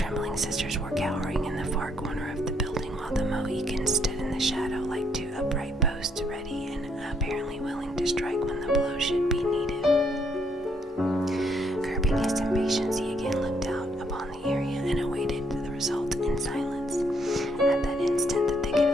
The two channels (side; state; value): both; normal; correlation 0.72